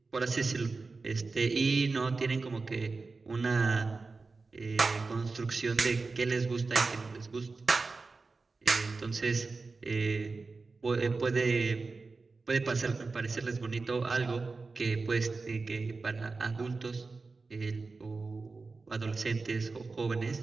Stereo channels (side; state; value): left; quieter; 4.0 dB